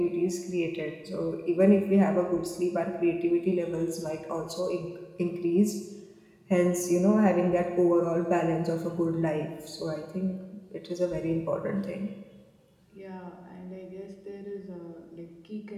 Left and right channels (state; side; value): identical; both; correlation 1.00